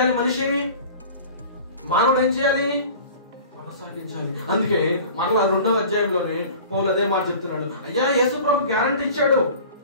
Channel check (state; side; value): inverted; both; correlation -0.42